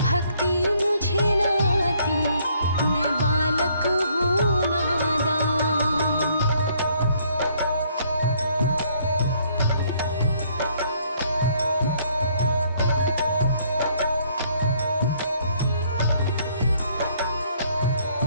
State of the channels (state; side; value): inverted; both; correlation -0.66